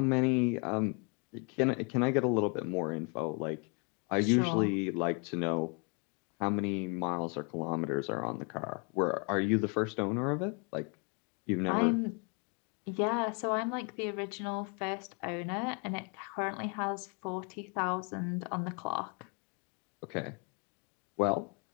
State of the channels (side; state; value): right; quieter; 35.1 dB